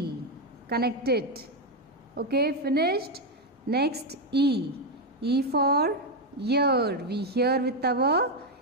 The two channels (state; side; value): normal; both; correlation 0.05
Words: connect it. Okay, finished. Next E, E for ear, we hear with our